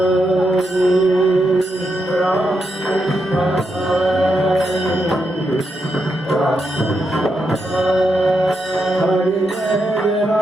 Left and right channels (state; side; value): normal; both; correlation 0.83